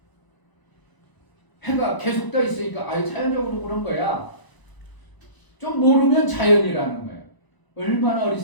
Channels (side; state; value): right; late; 1.0 ms